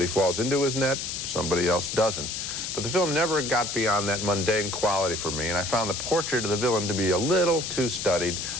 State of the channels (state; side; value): noise; left; hiss, 4 dB below the sound